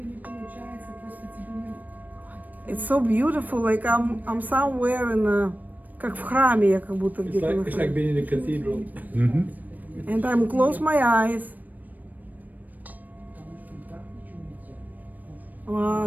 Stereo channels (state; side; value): late; left; 0.083 ms